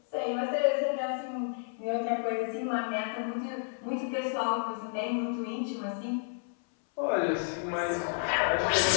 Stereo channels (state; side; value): silent; right; 57 dB below the other